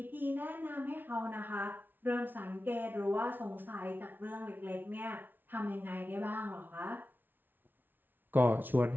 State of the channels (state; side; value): late; left; 0.091 ms